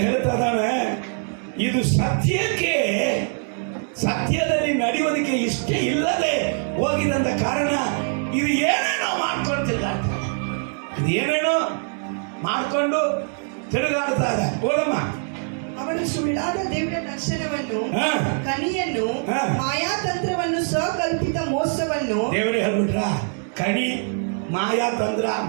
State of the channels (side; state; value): left; silent; 56 dB below the other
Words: ಹೇಳ್ತಾ ಇದ್ದಾನೆ, ಇದು ಸತ್ಯಕ್ಕೆ, ಸತ್ಯದಲ್ಲಿ ನಡೆಯೋದಕ್ಕೆ ಇಷ್ಟ ಇಲ್ಲದೆ ಹೋಗಿದಂತ ಕಾರಣ ಇದು ಏನೇನೋ ಮಾಡ್ಕೊಳ್ತಿಲ್ಲ. ಇದು ಏನೇನೋ ಮಾಡ್ಕೊಂಡು ತಿರುಗಾಡ್ತಾ ಇದೆ. ಓದಮ್ಮ. ಅವನು ಸುಳ್ಳಾದ ದಿವ್ಯ ದರ್ಶನವನ್ನು, ಹಾ. ಕನಿಯನ್ನು, ಹಾ. ಮಾಯಾತಂತ್ರವನ್ನು, ಸ್ವಕಲ್ಪಿತ ಮೋಸವನ್ನು, ದೇವರೇ ಹೇಳ್ಬಿಟ್ರ, ಕಣಿ, ಮಾಯಾ ತಂತ್ರ,